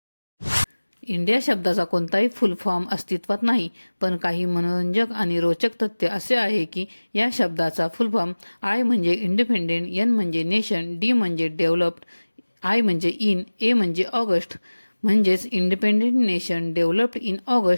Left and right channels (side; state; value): both; inverted; correlation -1.00